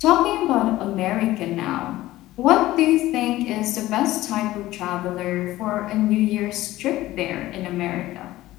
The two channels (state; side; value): quieter; right; 16.3 dB